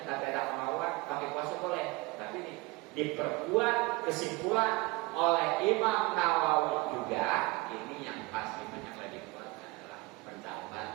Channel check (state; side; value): quieter; left; 23.8 dB